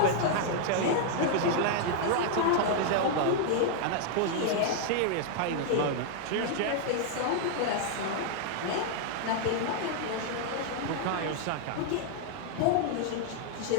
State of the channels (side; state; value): both; different; correlation 0.00